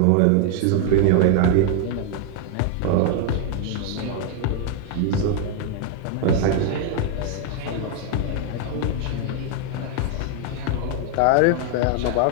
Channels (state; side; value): different; both; correlation 0.00